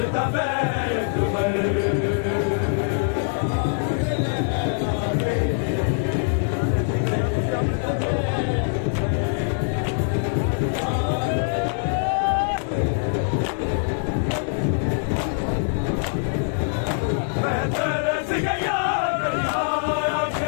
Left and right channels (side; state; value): right; silent; digital silence